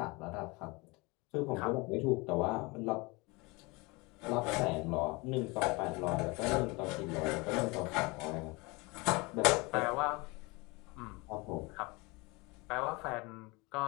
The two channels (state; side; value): quieter; right; 25.9 dB